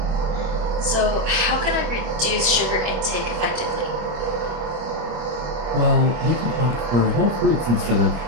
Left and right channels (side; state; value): left; late; 25 ms